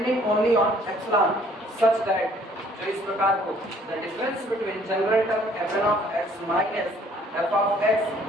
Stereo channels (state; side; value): normal; both; correlation 0.60